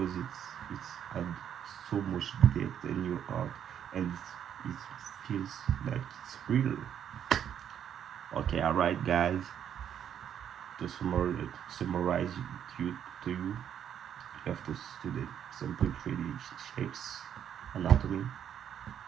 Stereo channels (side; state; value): left; quieter; 9.2 dB